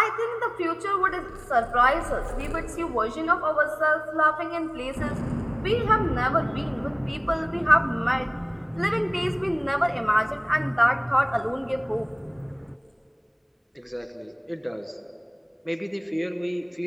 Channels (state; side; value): identical; both; correlation 1.00